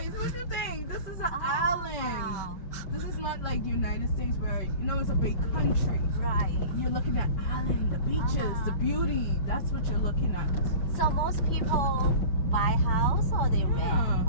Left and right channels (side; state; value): right; late; 5.2 ms